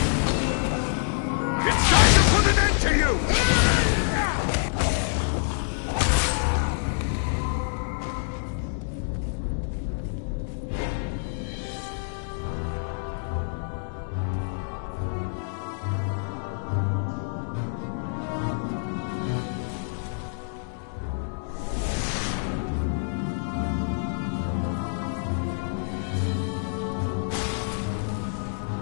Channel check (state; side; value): silent; right; digital silence